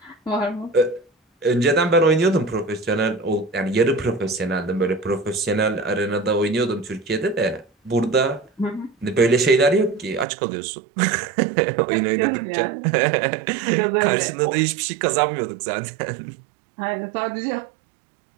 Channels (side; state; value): left; drops out; at 10.2 s